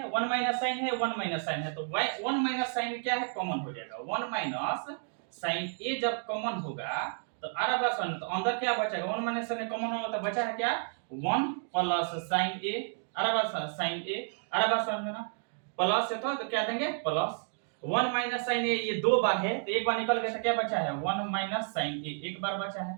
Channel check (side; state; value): left; silent; 57 dB below the other